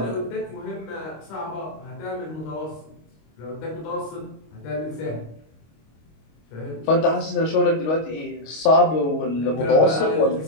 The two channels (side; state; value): right; late; 25 ms